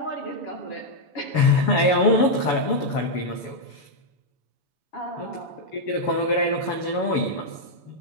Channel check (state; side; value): late; right; 7.0 ms